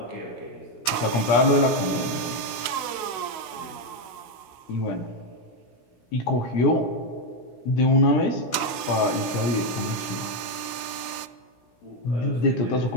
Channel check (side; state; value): right; late; 16 ms